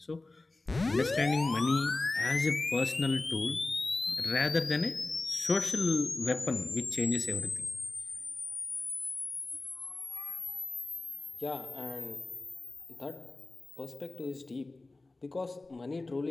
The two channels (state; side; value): quieter; right; 3.2 dB